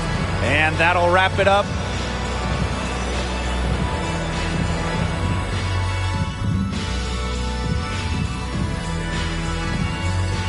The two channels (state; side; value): identical; both; correlation 1.00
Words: And that'll wrap it up